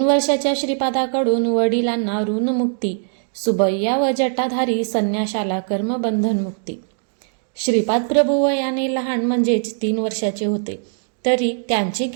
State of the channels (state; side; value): silent; left; digital silence